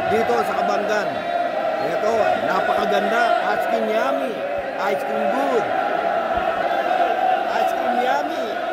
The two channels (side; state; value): both; identical; correlation 1.00